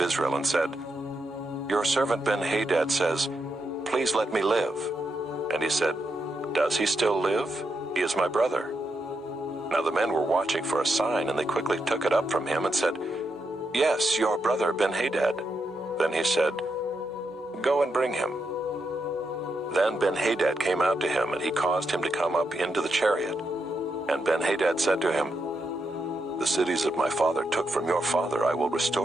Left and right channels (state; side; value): normal; both; correlation 0.83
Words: and said, Your servant Ben-Hadad says, Please let me live. And he said, Does he still live? He is my brother. Now the men were watching for a sign, and they quickly took it up from him and said, Yes, your brother Ben-Hadad. Then he said, Go and bring him. Then Ben-Hadad came out to him, and he caused him to come up into the chariot. And Ben-Hadad said to him, The cities that my father took from your father I will